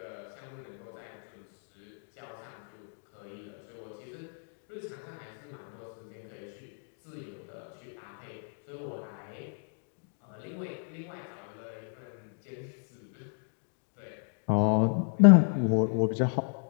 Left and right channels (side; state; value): right; silent; 56 dB below the other